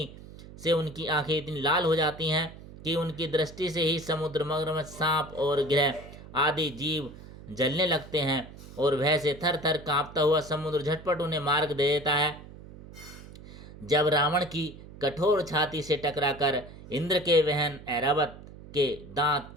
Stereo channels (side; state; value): right; noise; hum, 17 dB below the sound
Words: से उनकी आंखें इतनी लाल हो जाती हैं कि उनकी दृष्टि से ही समुद्र, मगरमच्छ, सांप और ग्रह आदि जीव जलने लगते हैं और भय से थर थर कांपता हुआ समुद्र झटपट उन्हें मार्ग दे देता है। जब रावण की कठोर छाती से टकराकर इंद्र के वहन ऐरावत के दांत